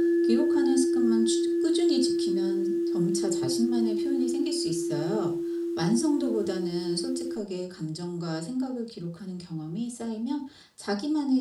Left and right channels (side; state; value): both; identical; correlation 1.00